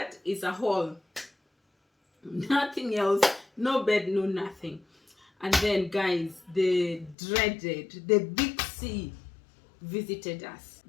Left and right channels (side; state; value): right; drops out; at 7.2 s